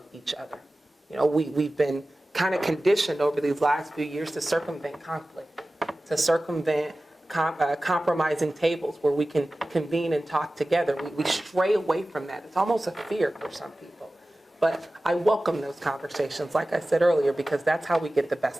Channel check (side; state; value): both; normal; correlation 0.96